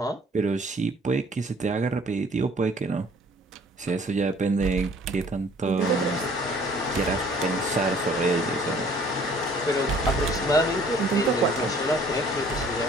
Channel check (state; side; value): normal; both; correlation 0.55